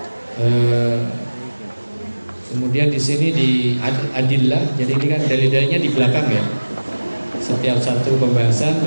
Kemudian di sini di adillah, jadi ini kan dalil-dalilnya di belakang ya. Setiap satu pembahasan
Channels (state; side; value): inverted; both; correlation -1.00